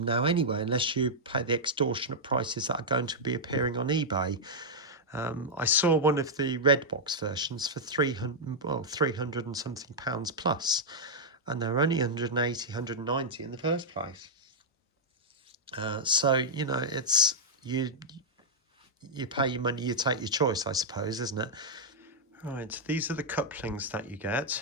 now anyway unless you pay the extortionate prices that are going to be appearing on eBay. I saw one of the red box versions for 300 and something pounds plus, and they're only 180, 190 in the first place. So, you know, it's you pay your money, you take your choice, I suppose, isn't it? Right, these are the couplings that you get.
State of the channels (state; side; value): normal; both; correlation -0.06